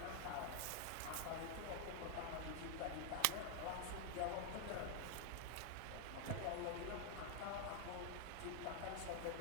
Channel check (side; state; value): both; different; correlation 0.00